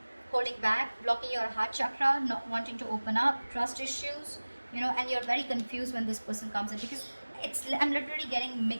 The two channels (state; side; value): inverted; both; correlation -1.00